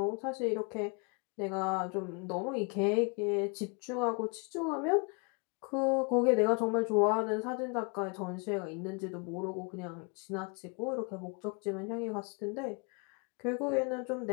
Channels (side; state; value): right; quieter; 34.4 dB